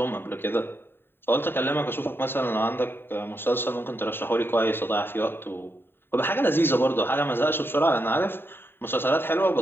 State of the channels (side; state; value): right; late; 0.11 ms